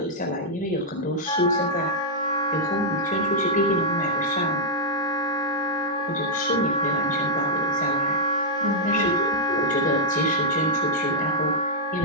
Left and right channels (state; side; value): normal; both; correlation -0.06